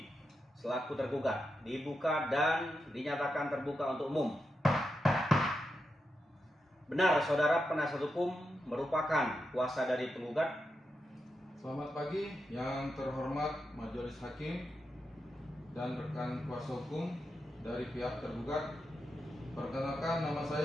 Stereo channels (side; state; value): both; normal; correlation 0.87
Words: selaku tergugat dibuka dan dinyatakan terbuka untuk umum. Benar, saudara penasihat hukum merupakan kuasa dari penggugat? Selamat pagi yang terhormat Majelis Hakim dan rekan kuasa hukum dari pihak tergugat. Perkenalkan, nama